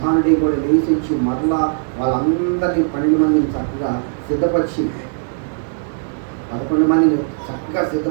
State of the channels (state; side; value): silent; left; digital silence